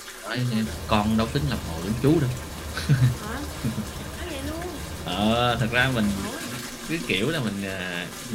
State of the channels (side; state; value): both; identical; correlation 1.00